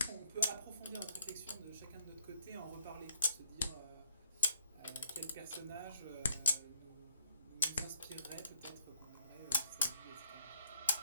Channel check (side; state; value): both; inverted; correlation -0.64